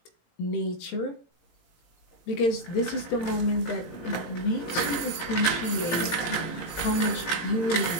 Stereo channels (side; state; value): right; late; 18 ms